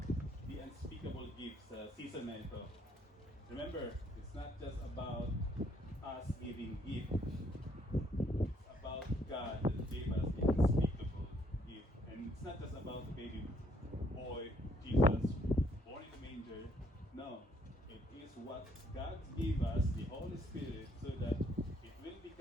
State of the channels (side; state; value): both; normal; correlation 0.67